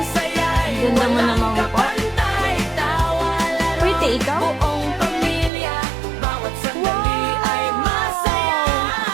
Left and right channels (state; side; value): drops out; left; at 5.5 s